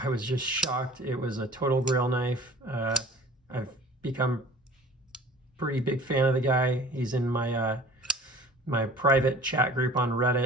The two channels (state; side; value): normal; both; correlation 0.45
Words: I was just shocked. It was a total grail knife. I've become pretty big fan of the guy. He's in my my private chat group on